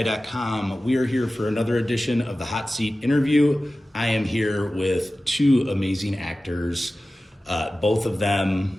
We are here for another edition of the Hot Seat interview. I am here with two amazing actors, both of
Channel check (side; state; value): both; normal; correlation 0.96